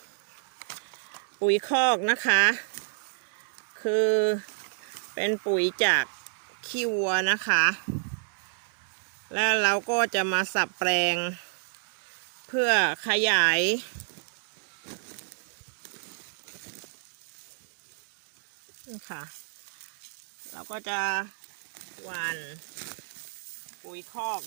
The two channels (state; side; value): silent; left; 58 dB below the other